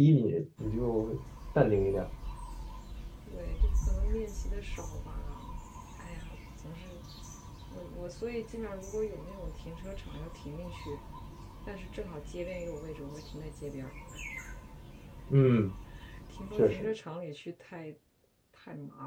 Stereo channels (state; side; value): identical; both; correlation 1.00